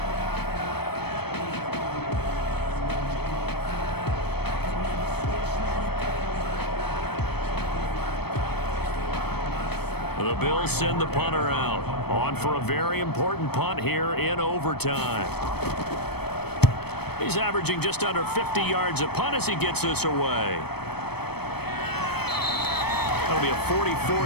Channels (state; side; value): late; right; 0.97 ms